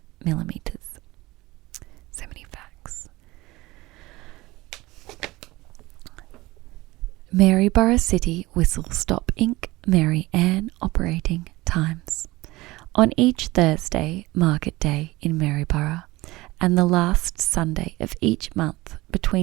millimeters. So many facts. Maryborough City Whistle Stop Inc. Mary Ann operating times. On each Thursday, market day in Maryborough, and the last Sunday of each month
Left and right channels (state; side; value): quieter; left; 19.9 dB